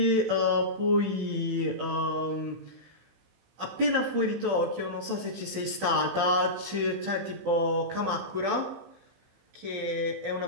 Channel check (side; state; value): left; late; 15 ms